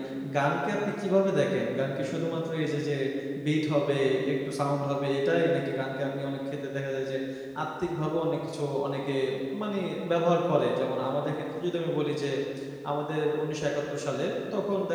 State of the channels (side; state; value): both; identical; correlation 1.00